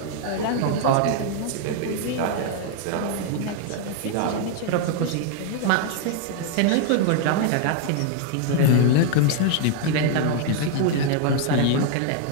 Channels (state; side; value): different; both; correlation 0.00